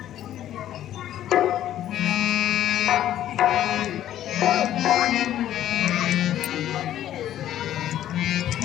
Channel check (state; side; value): quieter; right; 12.0 dB